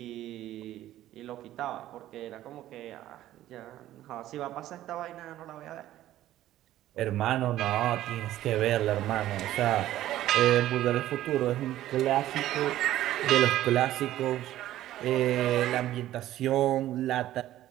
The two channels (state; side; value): quieter; left; 13.8 dB